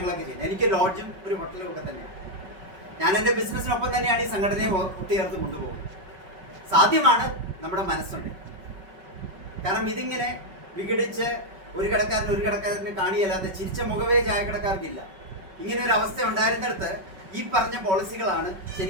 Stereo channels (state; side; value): late; left; 5.3 ms